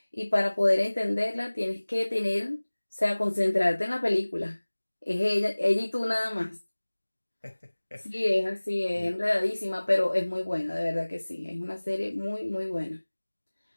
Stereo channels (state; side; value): inverted; both; correlation -1.00